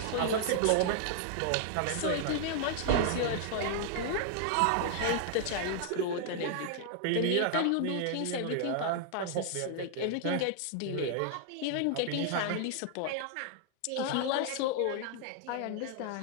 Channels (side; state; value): both; different; correlation -0.01